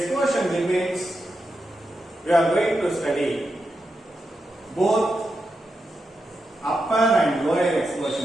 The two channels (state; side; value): normal; both; correlation 0.87